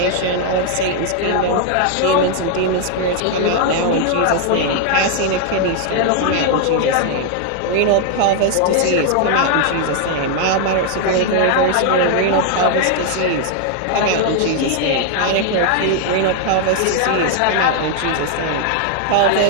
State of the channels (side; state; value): both; different; correlation 0.00